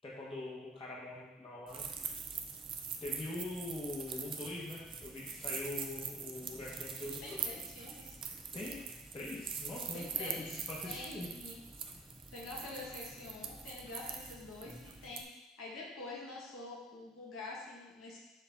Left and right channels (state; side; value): normal; both; correlation 0.53